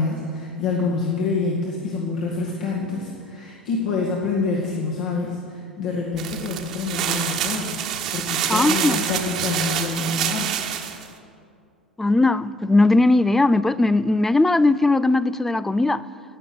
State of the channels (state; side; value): normal; both; correlation 0.69